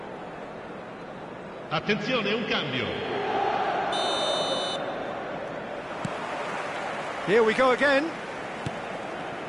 Attenzione, un cambio. Here we go again.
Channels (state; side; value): identical; both; correlation 1.00